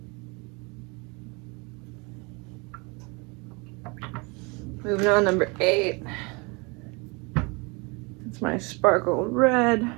Moving on, number 8. It's my sparkle red.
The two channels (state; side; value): quieter; left; 28.9 dB